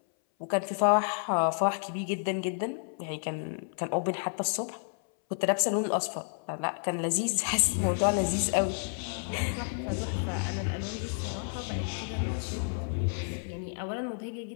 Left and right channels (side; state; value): right; silent; 57 dB below the other